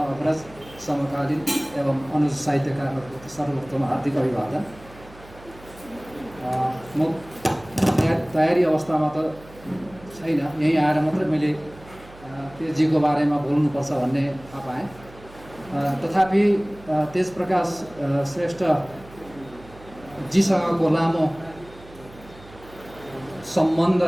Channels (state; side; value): noise; right; hum, 21 dB below the sound